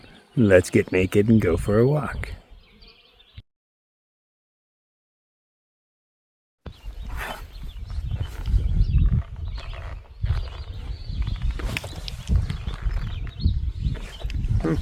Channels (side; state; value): both; identical; correlation 1.00